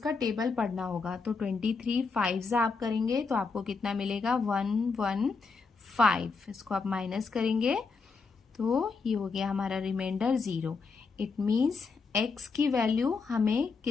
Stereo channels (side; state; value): right; quieter; 4.6 dB